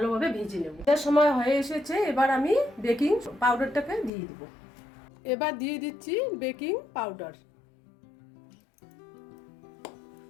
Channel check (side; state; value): right; drops out; at 4.1 s